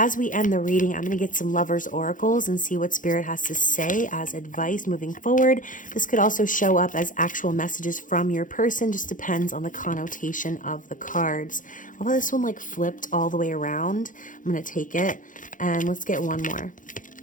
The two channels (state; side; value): late; right; 0.38 ms